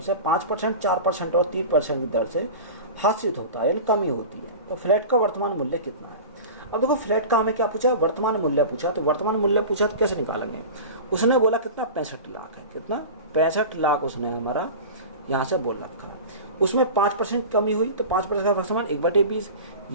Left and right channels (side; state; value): both; inverted; correlation -0.33